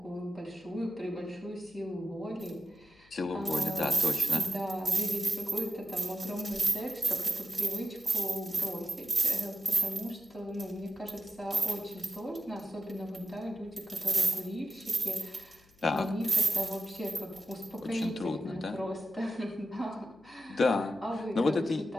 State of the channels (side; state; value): left; noise; hum, 29 dB below the sound